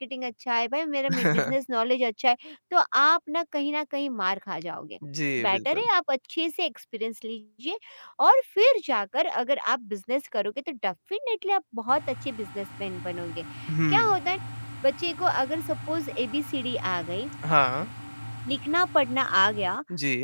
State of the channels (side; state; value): both; inverted; correlation -1.00